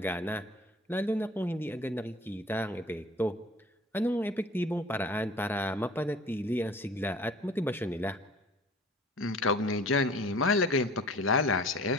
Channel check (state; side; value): normal; both; correlation 0.46